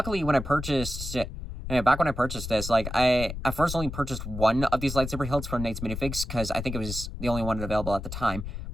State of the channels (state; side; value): noise; left; rumble, 7 dB below the sound